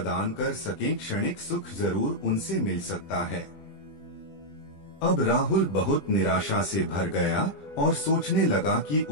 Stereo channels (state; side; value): late; right; 20 ms